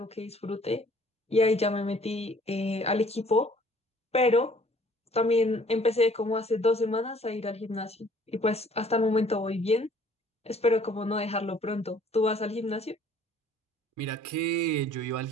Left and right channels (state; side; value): normal; both; correlation 0.56